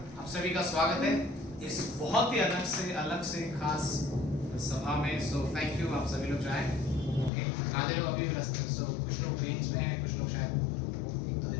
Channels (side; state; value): right; drops out; at 7.3 s